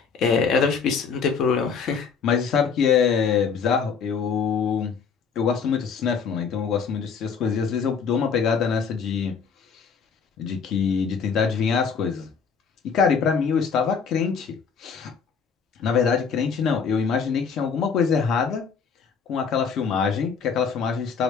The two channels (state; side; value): quieter; right; 6.0 dB